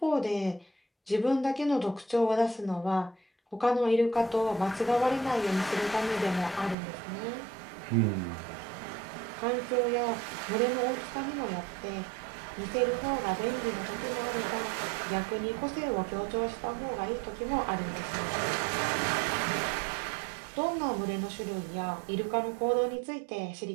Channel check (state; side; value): drops out; left; at 6.8 s